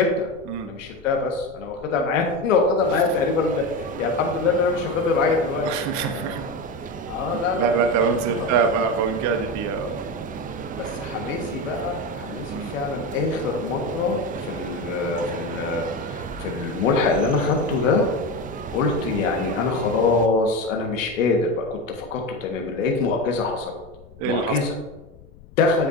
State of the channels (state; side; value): noise; left; rumble, 22 dB below the sound